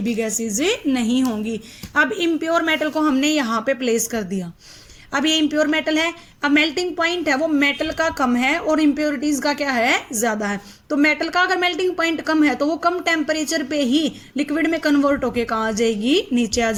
भी गैसेज नहीं होंगी। अब इम्प्योर मेटल को हमने यहाँ पे प्लेस कर दिया। अब ये इम्प्योर मेटल है, अब मेल्टिंग पॉइंट है वो मेटल का कम है और इम्प्योरिटीज का क्या है, ज्यादा है। तो मेटल का अगर मेल्टिंग पॉइंट कम है तो वो कम टेम्परेचर पे ही लिक्विड में कन्वर्ट होके कहाँ आ जाएगी, नीचे आ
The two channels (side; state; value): both; identical; correlation 1.00